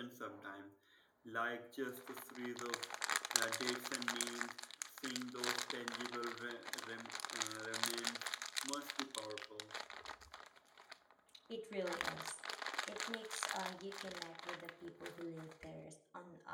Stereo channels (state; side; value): identical; both; correlation 1.00